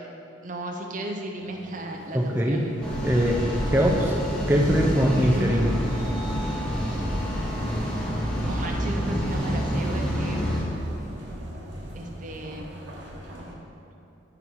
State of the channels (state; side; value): normal; both; correlation 0.79